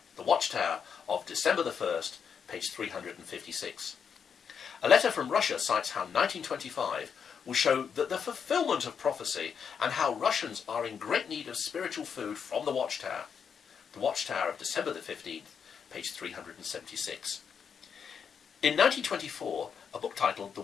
The Watchtower of December the 1st, page 356. A letter from Russia cites how 1925 will show that the fulfillment of prophecy and how Russians are in great need of spiritual food from the Watchtower. The Watchtower of December the 15th, page 376. In 1924, a book titled The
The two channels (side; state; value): right; quieter; 6.9 dB